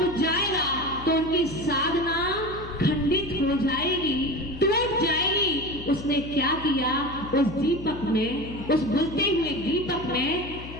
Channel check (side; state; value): left; noise; hum, 13 dB below the sound